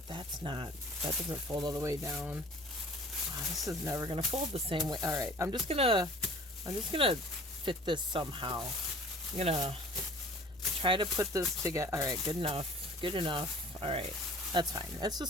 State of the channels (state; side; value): normal; both; correlation 0.47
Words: that doesn't fold all the way down. Oh, this is never gonna fold the same way. All right, I'm just gonna fit this somehow. I'm gonna try to put this together. All right, good enough. All right, that's fine. That's